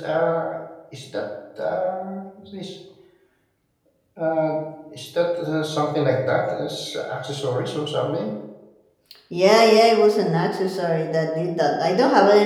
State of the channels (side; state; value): both; identical; correlation 1.00